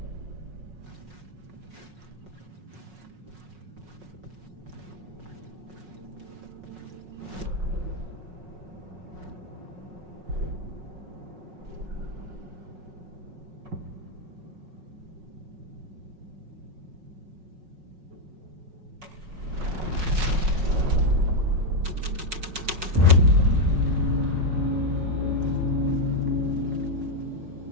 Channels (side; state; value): left; late; 5.4 ms